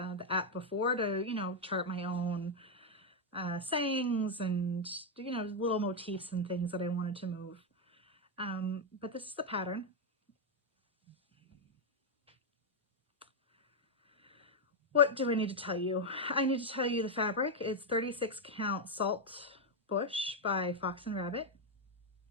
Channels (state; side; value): normal; both; correlation 0.01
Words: app before to, chart my own sayings and, little motifs and things that I wanted to move. But this is the pattern. What do I need to tell you? I need to tell you the fabric. It's 36 count Salt Bush by Fox and Rabbit.